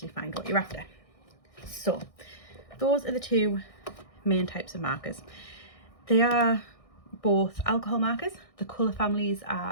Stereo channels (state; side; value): late; right; 1.6 ms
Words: find what you're after. So those are the 2 main types of markers. They are both alcohol markers. The colour families